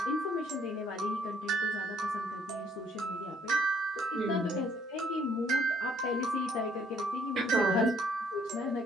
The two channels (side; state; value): both; normal; correlation 0.64